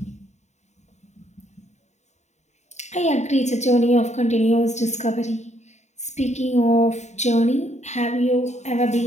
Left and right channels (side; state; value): right; late; 0.33 ms